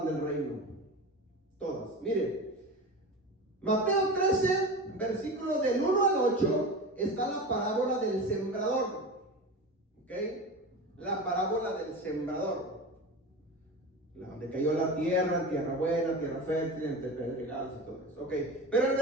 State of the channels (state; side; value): normal; both; correlation 0.29